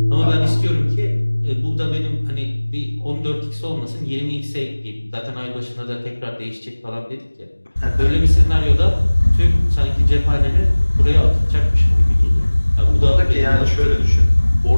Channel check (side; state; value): both; inverted; correlation -1.00